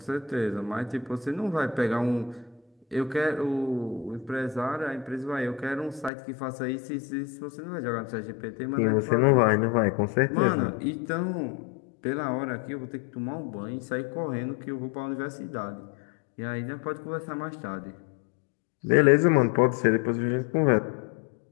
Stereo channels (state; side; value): drops out; right; at 6.1 s